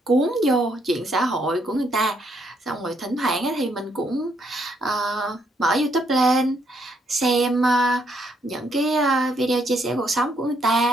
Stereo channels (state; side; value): normal; both; correlation 0.73